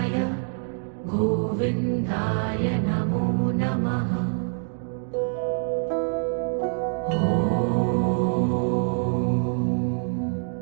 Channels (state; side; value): silent; left; 59 dB below the other